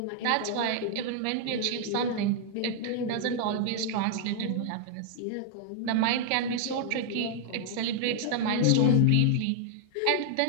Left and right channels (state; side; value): different; both; correlation 0.00